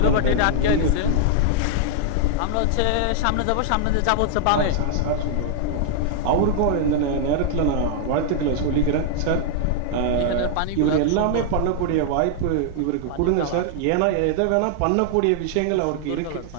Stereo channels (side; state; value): both; different; correlation -0.01